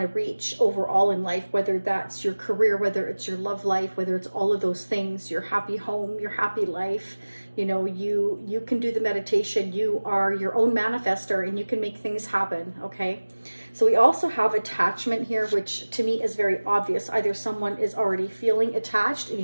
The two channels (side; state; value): both; inverted; correlation -1.00